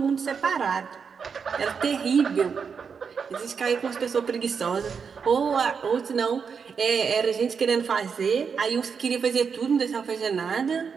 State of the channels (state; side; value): quieter; left; 6.1 dB